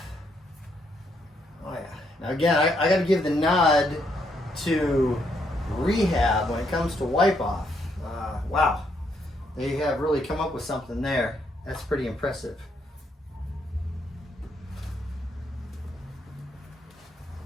Oh yeah. Now again, I got to give the nod to rehab when it comes to wipe off. Wow, they have really come up with something there. That's pretty impressive.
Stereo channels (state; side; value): normal; both; correlation 0.74